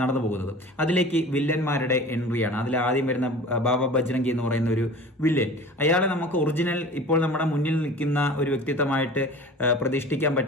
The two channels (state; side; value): normal; both; correlation 0.40